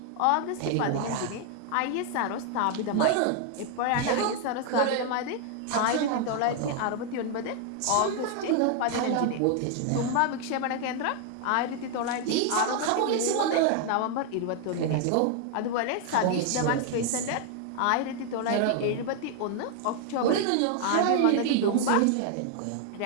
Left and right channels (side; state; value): both; different; correlation 0.00